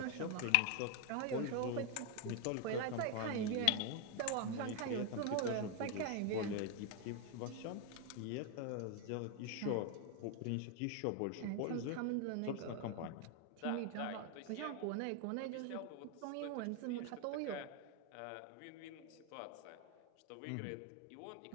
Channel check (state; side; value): different; both; correlation 0.01